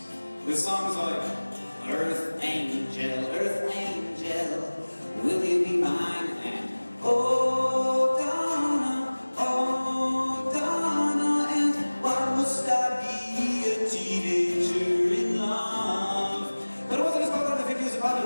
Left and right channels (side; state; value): both; inverted; correlation -1.00